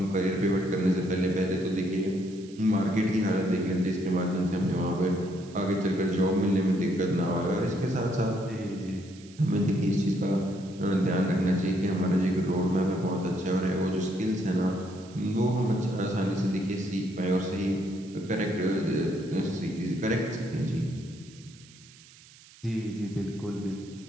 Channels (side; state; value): right; noise; hiss, 23 dB below the sound